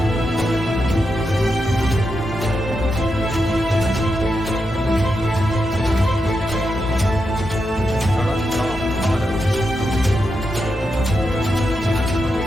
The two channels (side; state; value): both; normal; correlation 0.86